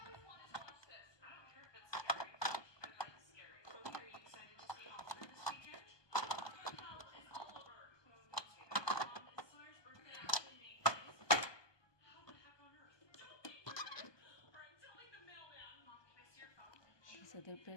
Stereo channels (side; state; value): right; late; 1.2 ms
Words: These are the